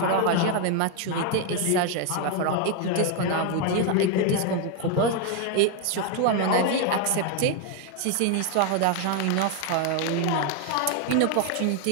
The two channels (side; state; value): both; different; correlation 0.01